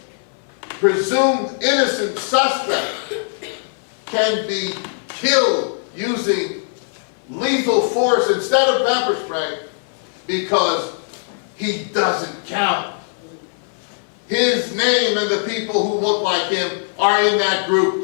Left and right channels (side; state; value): right; silent; 59 dB below the other